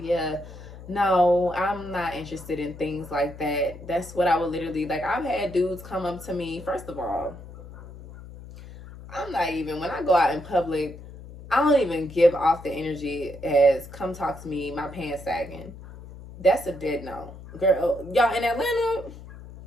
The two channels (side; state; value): left; noise; hum, 15 dB below the sound